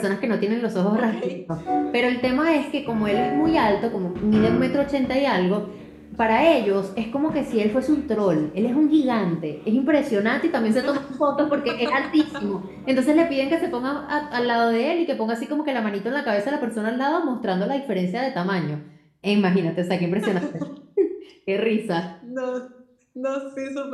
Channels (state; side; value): identical; both; correlation 1.00